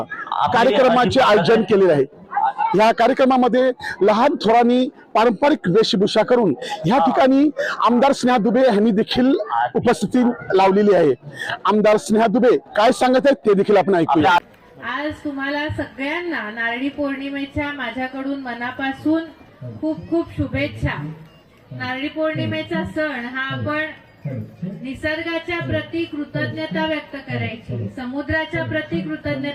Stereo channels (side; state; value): both; identical; correlation 1.00